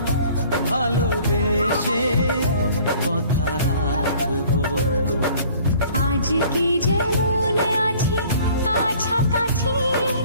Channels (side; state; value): both; inverted; correlation -0.53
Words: ভালোবেসে কথা রাখবো। আজকে যেমন আছি কাছাকাছি,